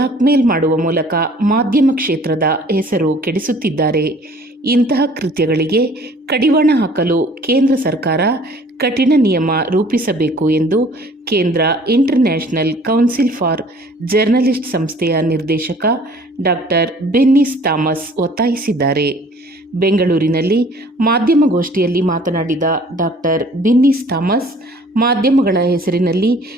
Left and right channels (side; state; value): both; normal; correlation 0.53